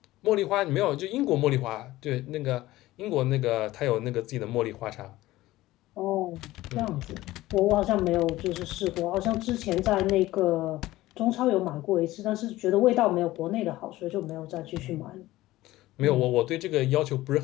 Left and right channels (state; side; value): quieter; right; 17.0 dB